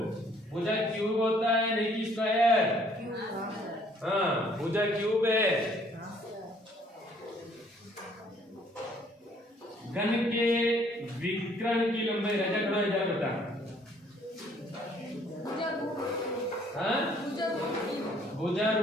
भुजा क्यूब होता है, नहीं कि स्क्वायर। हाँ, भुजा क्यूब है। घन के विकर्ण की लंबाई राजा खड़ा इधर बता। हाँ, भुजा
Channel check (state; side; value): normal; both; correlation 0.61